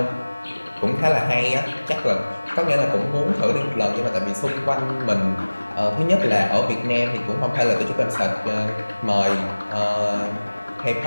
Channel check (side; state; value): both; inverted; correlation -1.00